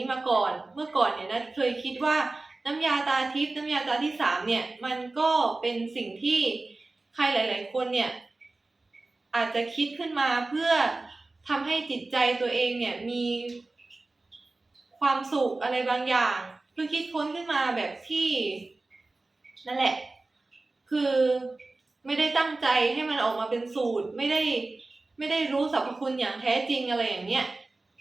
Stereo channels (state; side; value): quieter; left; 3.2 dB